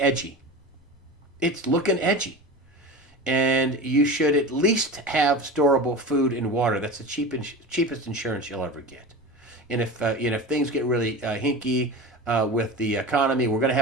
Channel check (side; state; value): both; normal; correlation 0.30